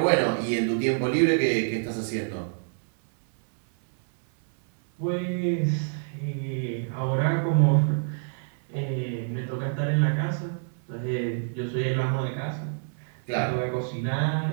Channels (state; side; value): silent; left; 60 dB below the other